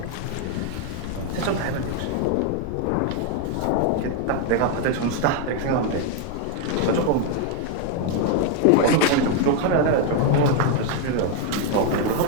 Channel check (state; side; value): different; both; correlation 0.01